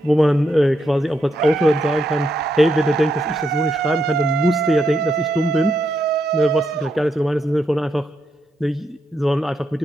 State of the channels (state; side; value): normal; both; correlation 0.81